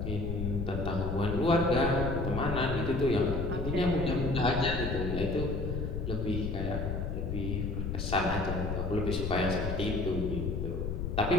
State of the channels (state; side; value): noise; left; rumble, 2 dB below the sound